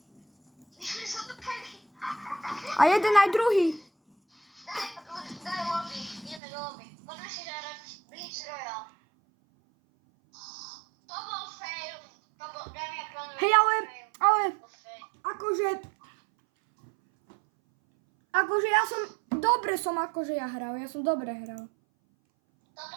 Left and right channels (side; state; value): left; drops out; at 6.4 s